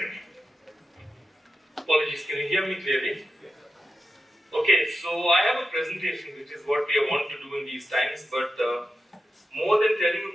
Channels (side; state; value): both; normal; correlation 0.89